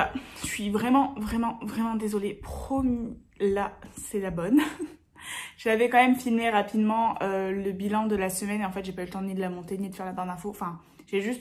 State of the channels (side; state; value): both; identical; correlation 1.00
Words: je suis vraiment désolée. Promis, là c'est la bonne. J'avais quand même filmé rapidement le bilan de la semaine et en fait j'ai pas eu le temps ni de la monter ni de faire la barre d'infos. Enfin, j'ai